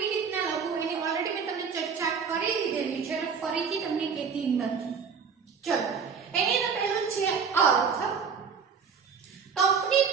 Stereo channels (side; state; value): left; quieter; 6.1 dB